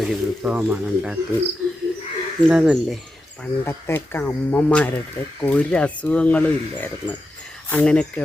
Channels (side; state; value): both; normal; correlation 0.89